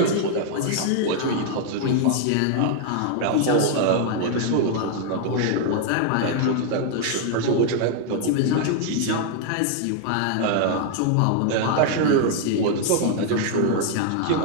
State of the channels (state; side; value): different; both; correlation 0.00